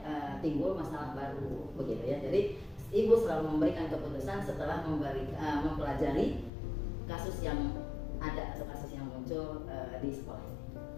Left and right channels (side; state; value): right; drops out; at 6.5 s